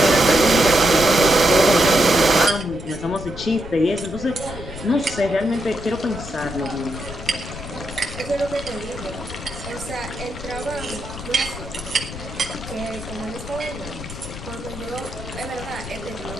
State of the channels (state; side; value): noise; left; rumble, 11 dB below the sound